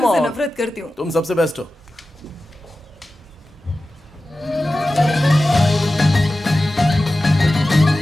on. नफरत करती हूँ। तुम सबसे बेस्ट हो।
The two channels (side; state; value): both; normal; correlation 0.95